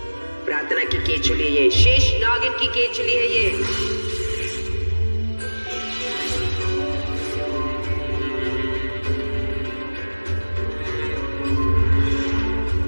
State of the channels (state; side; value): inverted; both; correlation -1.00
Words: प्रार्थना की केचुली, ये शेष नागिन की केचुली है ये।